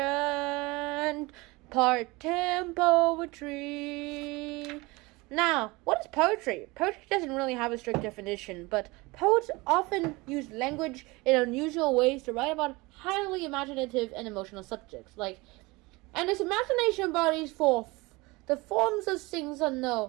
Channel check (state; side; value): quieter; left; 23.5 dB